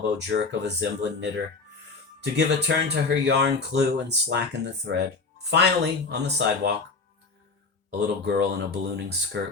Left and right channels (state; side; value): quieter; right; 4.1 dB